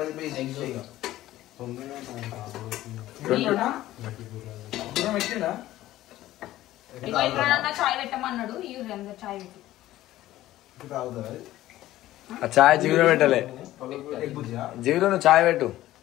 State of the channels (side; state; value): right; quieter; 15.0 dB